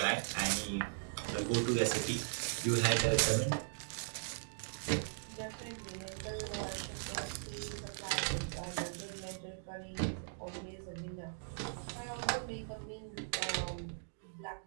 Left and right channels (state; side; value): silent; left; digital silence